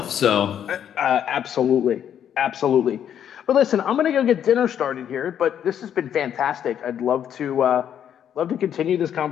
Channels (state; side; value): quieter; right; 9.4 dB